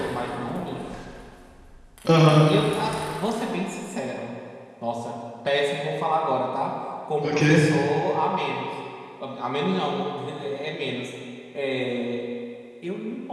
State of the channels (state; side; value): identical; both; correlation 1.00